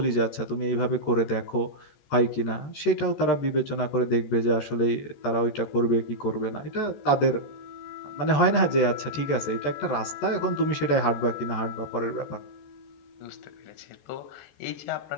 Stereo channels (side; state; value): right; late; 14 ms